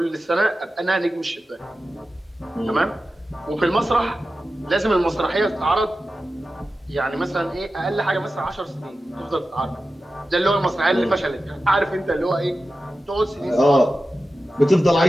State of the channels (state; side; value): normal; both; correlation 0.93